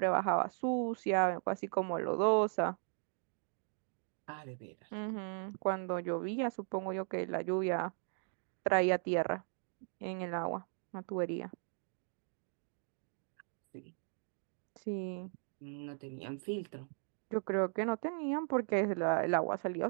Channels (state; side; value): silent; left; 53 dB below the other